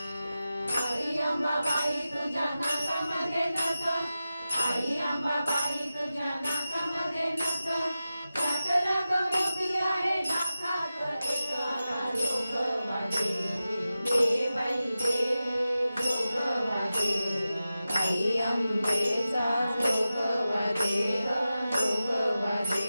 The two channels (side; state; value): both; inverted; correlation -0.93